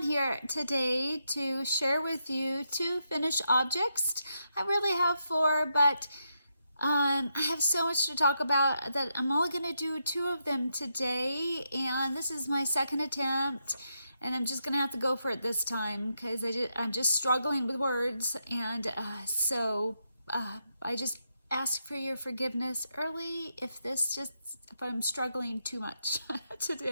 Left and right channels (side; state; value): both; inverted; correlation -0.82